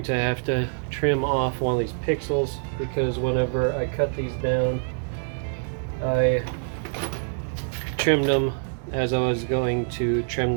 to have to trim off one of these pixels, because whenever I cut these down, I trimmed them as I was going to trim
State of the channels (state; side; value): silent; left; digital silence